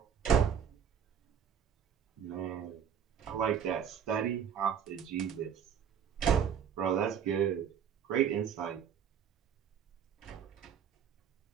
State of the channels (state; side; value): quieter; left; 8.2 dB